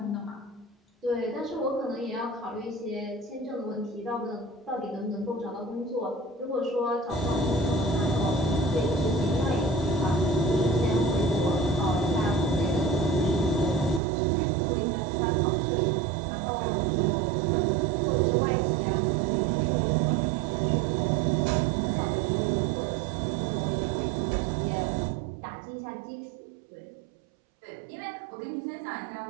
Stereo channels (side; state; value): left; drops out; at 14.0 s